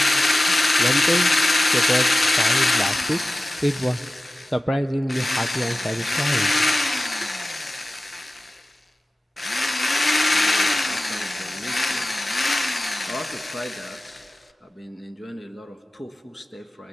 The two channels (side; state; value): both; normal; correlation 0.96